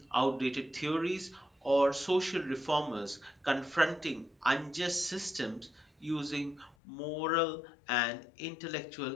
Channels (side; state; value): right; drops out; at 6.8 s